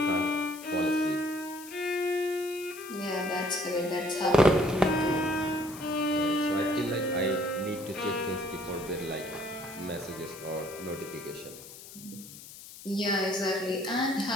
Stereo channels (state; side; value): noise; left; hiss, 16 dB below the sound